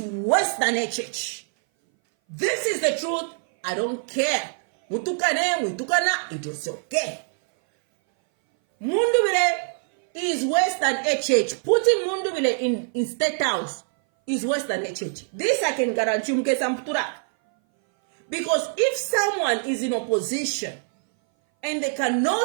worse than HH. This is the truth. I don't care. Mutukana, it is okay. Mundubile is worse than HH. Putting Mundubile in State House is worse than HH. This I can guarantee you. Because if someone is in opposition and they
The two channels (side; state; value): left; silent; 59 dB below the other